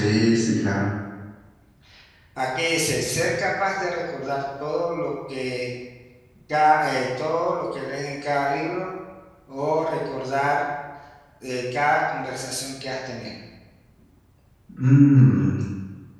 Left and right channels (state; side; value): identical; both; correlation 1.00